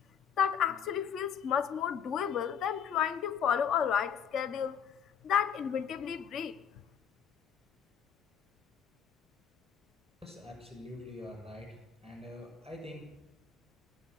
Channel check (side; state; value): right; quieter; 7.7 dB